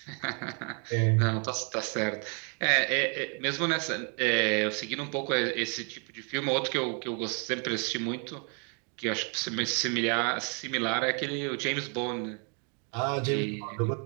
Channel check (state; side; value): quieter; left; 37.7 dB